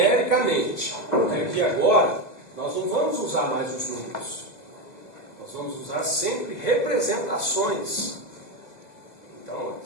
aqui agora, nós não vamos usar mais os números. Nós vamos usar sempre representações. Então,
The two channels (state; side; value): late; right; 2.0 ms